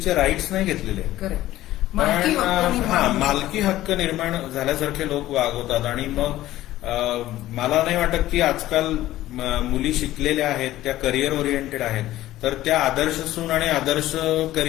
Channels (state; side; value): quieter; right; 15.1 dB